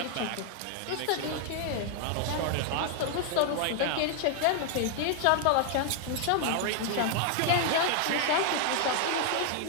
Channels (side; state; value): both; different; correlation 0.00